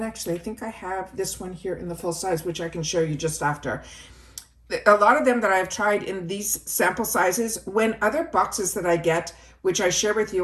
actually I think I have this one here in the full size, which I can show you just after. A lot of them that I've tried in these sample sizes, when other boxes that I get, which I share with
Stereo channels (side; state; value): both; identical; correlation 1.00